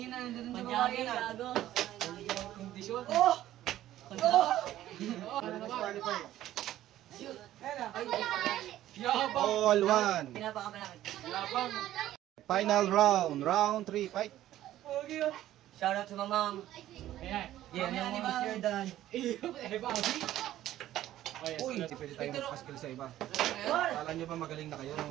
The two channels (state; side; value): quieter; left; 13.5 dB